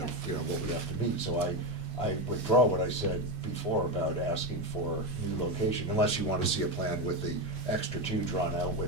of, what we have to meet. So I withdraw what I said before about asking for new location, unless you want to see a plan with the extra 2 drawn out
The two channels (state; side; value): normal; both; correlation 0.13